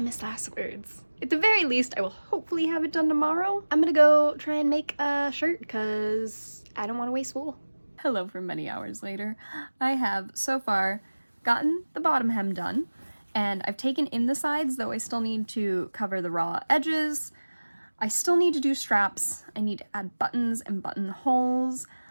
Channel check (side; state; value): both; inverted; correlation -1.00